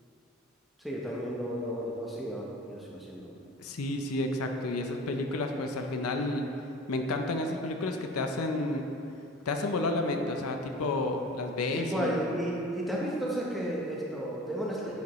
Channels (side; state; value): both; normal; correlation 0.41